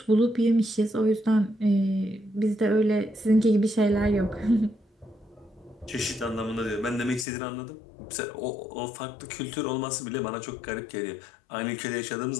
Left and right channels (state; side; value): drops out; right; at 7.2 s